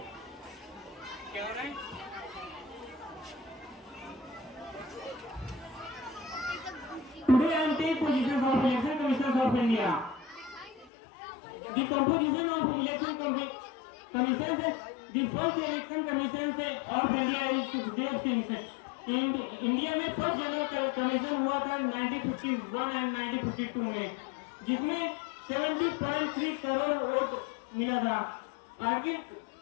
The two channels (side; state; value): right; drops out; at 10.9 s